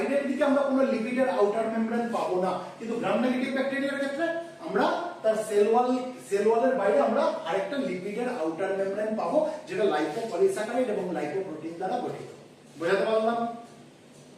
দিকে আমরা কোনো লিপিডের আউটার মেমব্রেন পাবো না, কিন্তু গ্রাম নেগেটিভ ব্যাকটেরিয়ার ক্ষেত্রে আমরা তার সেল ওয়ালের বাইরে আমরা আরেকটা লিপিডের আউটার মেমব্রেন পাবো, যেটা লাইপোপলিস্যাকারাইড এবং লাইপোপ্রোটিন দ্বারা গঠিত। বুঝাতে পারলাম?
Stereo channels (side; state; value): both; identical; correlation 1.00